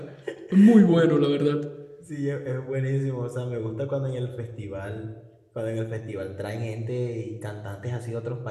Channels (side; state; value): both; identical; correlation 1.00